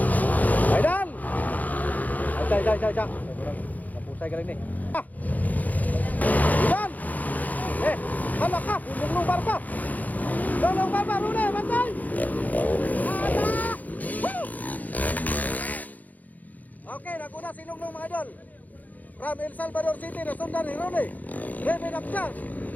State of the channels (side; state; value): right; late; 0.080 ms